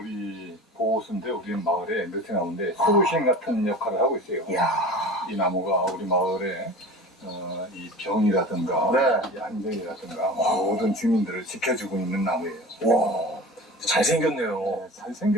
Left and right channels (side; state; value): both; normal; correlation 0.37